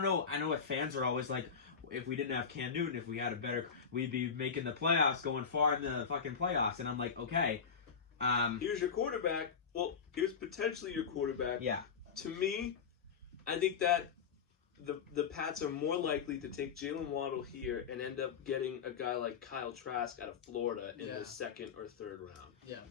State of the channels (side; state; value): right; quieter; 6.3 dB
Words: know. I know what fans are always like. If we didn't have Cam Newton, if we had a better, we'd be making the playoffs, going far in the fucking playoffs. And I'm like, okay, Here's your quarterback. Well, here's potentially your quarterback. yeah. To me, I think that the Pats are more likely to take Jalen Waddle here and end up getting a guy like Kyle Trask out of Florida in Yeah. the 2nd or 3rd round. Yeah.